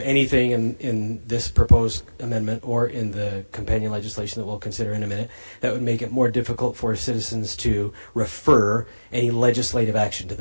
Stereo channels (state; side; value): inverted; both; correlation -1.00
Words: anything in this proposed amendment or in the companion legislation that we'll consider in a minute that would make it more difficult for citizens to refer any legislative action to